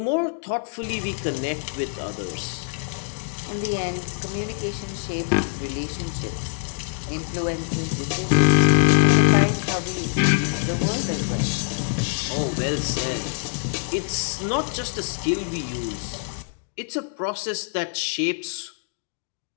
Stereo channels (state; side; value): silent; right; 62 dB below the other